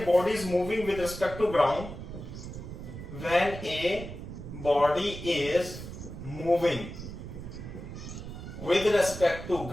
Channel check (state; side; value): noise; right; rumble, 10 dB below the sound